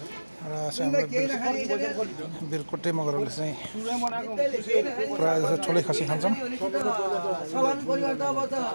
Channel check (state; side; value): inverted; both; correlation -1.00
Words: र बिरकोटे मगरहरूले चाहिँ प्रायः जस्तो ठुलै खसी खान्छौँ